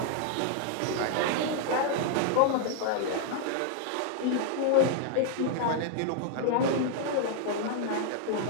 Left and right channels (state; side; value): different; both; correlation 0.00